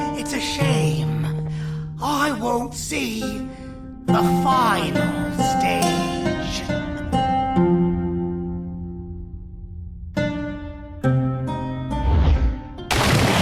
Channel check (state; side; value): identical; both; correlation 1.00